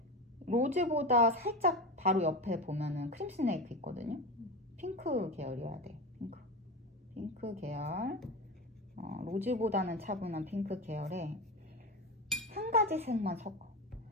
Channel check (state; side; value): normal; both; correlation 0.23